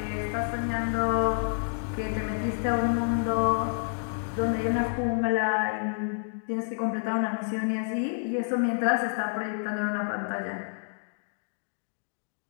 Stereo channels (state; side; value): silent; right; digital silence